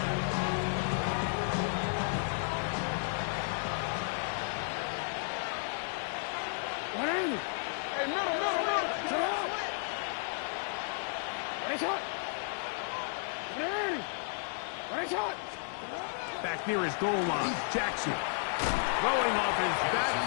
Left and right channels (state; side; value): silent; right; 56 dB below the other